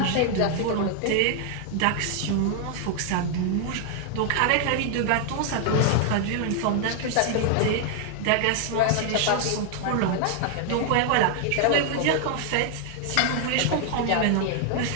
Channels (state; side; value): different; both; correlation 0.00